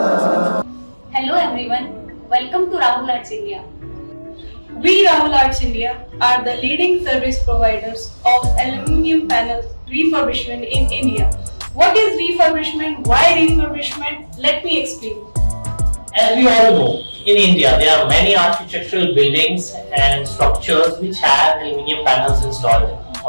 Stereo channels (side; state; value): both; inverted; correlation -1.00